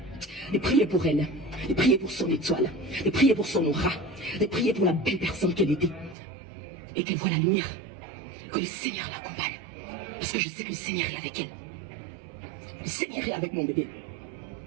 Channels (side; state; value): left; drops out; at 6.2 s